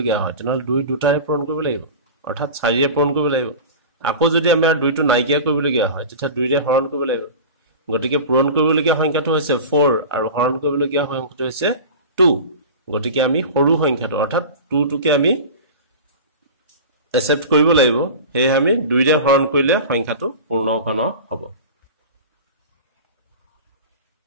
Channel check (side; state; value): both; inverted; correlation -0.33